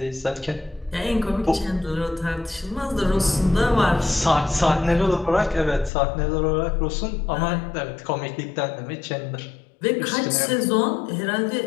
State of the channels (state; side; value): drops out; right; at 5.9 s